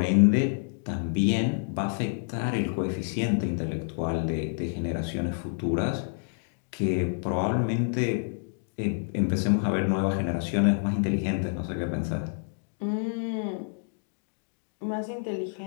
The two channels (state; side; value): silent; right; digital silence